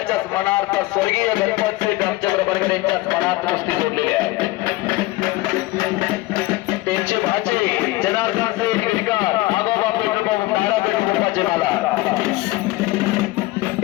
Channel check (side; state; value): right; quieter; 19.5 dB